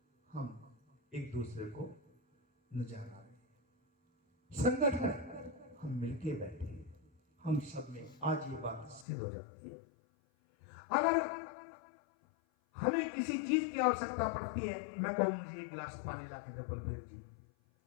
हम एक दूसरे को नजर आ रहे हैं, संगठन हम मिलके बैठे हैं। हम सब में आज ये बात सिद्ध हो जाती है। अगर हमें किसी चीज की आवश्यकता पड़ती है, मैं कहूं मुझे 1 गिलास पानी ला के दो बलबीर जी,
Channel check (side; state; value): right; drops out; at 9.1 s